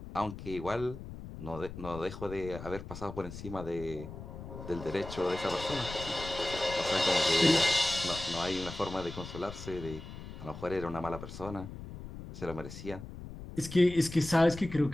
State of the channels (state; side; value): noise; left; rumble, 11 dB below the sound